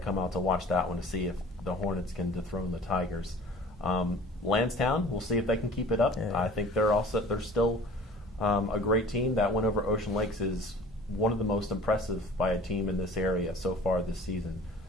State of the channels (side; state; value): both; normal; correlation 0.46